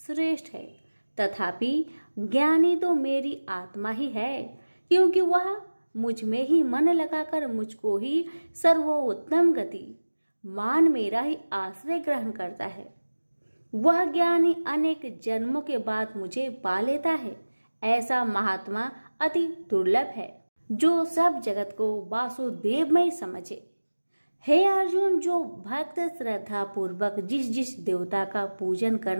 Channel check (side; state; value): both; inverted; correlation -1.00